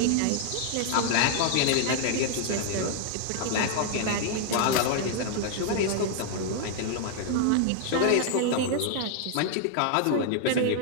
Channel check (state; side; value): different; both; correlation 0.00